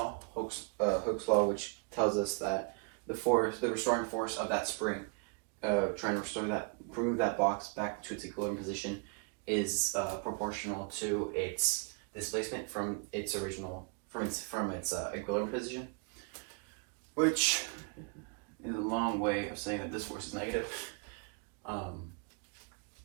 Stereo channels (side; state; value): left; quieter; 35.7 dB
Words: which tells us that the restoring force of that spring, trying to move that box back to its equilibrium position, is proportional to its displacement from its equilibrium position, which is a long way of saying that this force is negative.